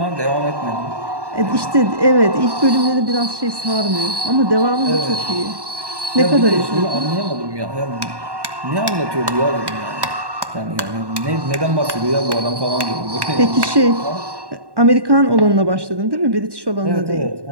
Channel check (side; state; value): left; late; 1.1 ms